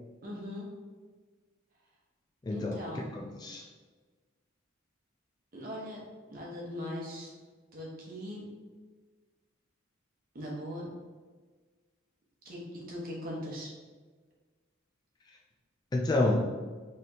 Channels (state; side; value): normal; both; correlation 0.68